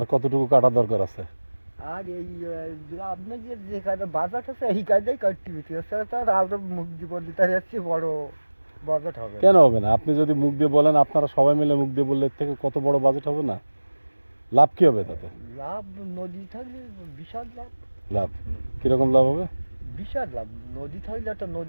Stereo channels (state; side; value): inverted; both; correlation -1.00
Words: কতটুকু কাটা দরকার আছে? আর এই আপনার যে কাটা বাজার আছে এই কায়দায় কাটতে হচ্ছে, এছাড়া তো আর আমরা মুখ দিব তার যাচ্ছে বড় বাজেট হবে। কেন হবে না? আপনি যদি মুখ দিয়ে বলেন, আপনারা সবাই মিলে মুখ দিয়ে বললে এর থেকে কত বড় বাজেট হবে না? লাভ কি হবে তাতে? লাভ নদী থাকলে বিশাল লাভ। লাভ কিরকম লাভ হবে? বিশাল লাভ। নদী থাকলে একটা